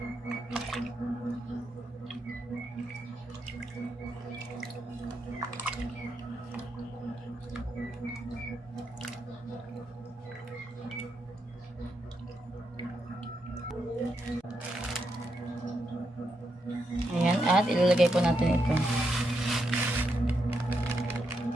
At ilalagay po natin ito.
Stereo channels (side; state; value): both; normal; correlation 0.82